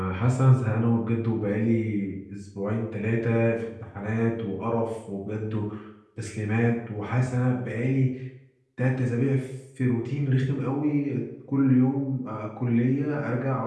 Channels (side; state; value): both; identical; correlation 1.00